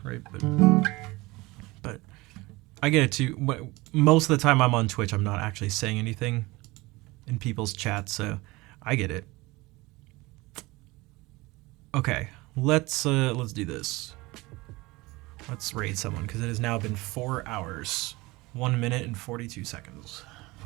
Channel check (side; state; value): left; quieter; 22.1 dB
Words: right? But I get it too. Most of the time I'm on Twitch, I'm not actually saying anything in people's chats, so I get it. Okay, let's do this. Let's raid someone, because it has now been 4 hours, 1 minute and 42 seconds.